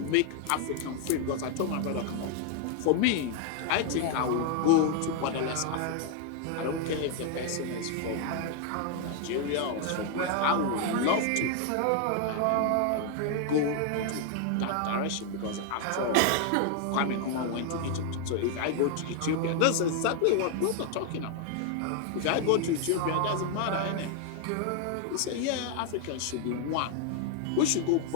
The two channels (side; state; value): both; different; correlation 0.00